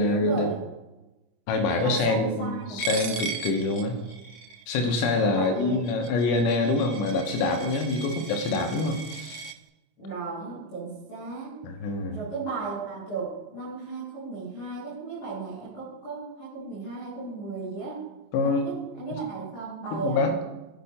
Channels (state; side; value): late; right; 25 ms